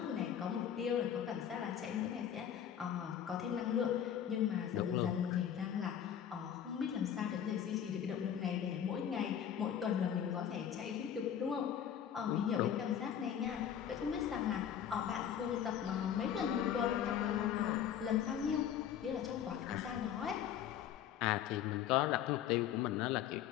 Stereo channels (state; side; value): quieter; right; 9.3 dB